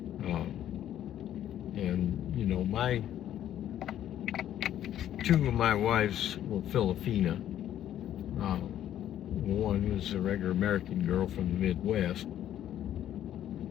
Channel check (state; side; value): quieter; right; 11.4 dB